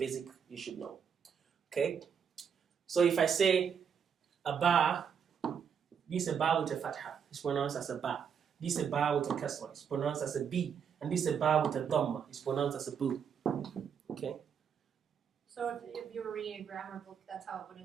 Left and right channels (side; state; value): left; quieter; 7.3 dB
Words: you should know. Okay. So if I say a ba, this is a ba with a fatha. It's pronounced as a ba. This is a ba with a kasra. It's pronounced as a b. And this is a ba with a dhamma. It's pronounced as a bu. Okay. So if you were reading a grammar book, that's how it would